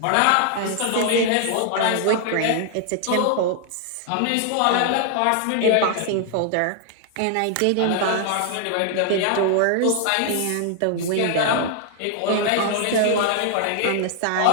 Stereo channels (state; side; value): different; both; correlation 0.00